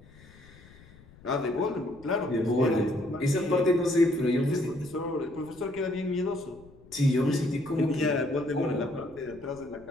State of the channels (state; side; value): noise; left; rumble, 23 dB below the sound